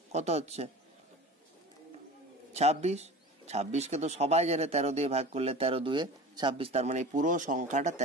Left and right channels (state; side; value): normal; both; correlation 0.36